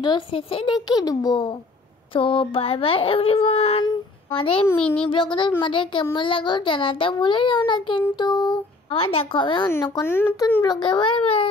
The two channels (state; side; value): quieter; right; 3.3 dB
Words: শেষে দেখিয়ে দেবো। তো বাই বাই এভরিওয়ান। আমাদের মিনি ব্লগটা তোমাদের কেমন লাগলো জানাতে ভুলে যাও না কিন্তু। আবার দেখা হবে অন্য কোনো নতুন ব্লগে। Bye bye.